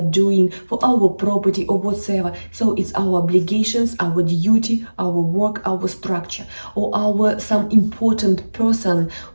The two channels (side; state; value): both; inverted; correlation -1.00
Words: doing, for our property or whatsoever. So it's our obligations, our duty, our work, our structure, or our some important person